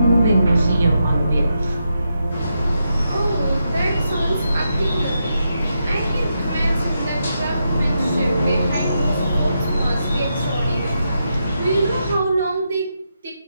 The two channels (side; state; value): both; inverted; correlation -0.84